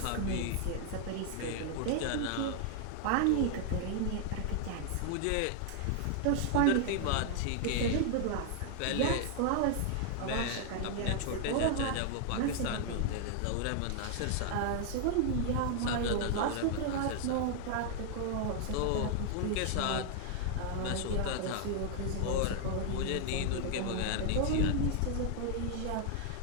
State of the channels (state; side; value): different; both; correlation 0.00